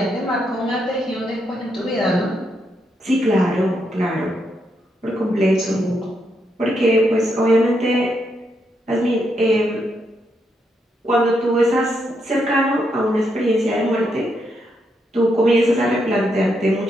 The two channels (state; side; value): normal; both; correlation 0.80